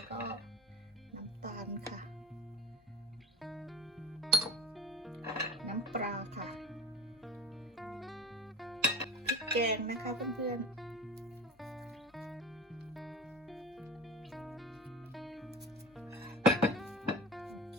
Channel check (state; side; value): normal; both; correlation 0.32